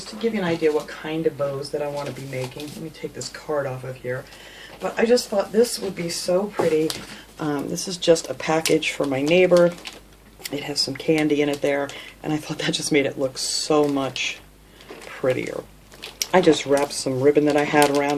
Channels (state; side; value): identical; both; correlation 1.00